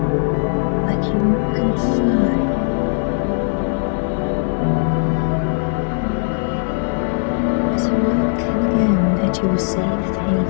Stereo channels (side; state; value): right; silent; digital silence